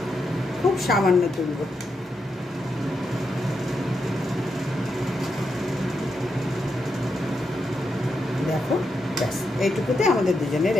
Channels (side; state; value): both; normal; correlation 0.84